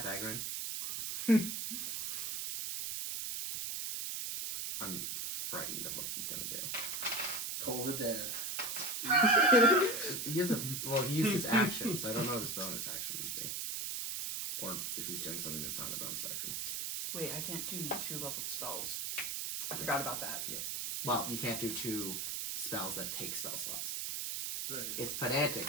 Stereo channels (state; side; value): noise; right; hiss, 2 dB below the sound